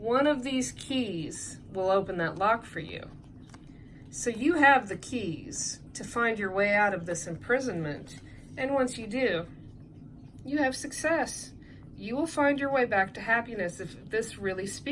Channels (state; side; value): identical; both; correlation 1.00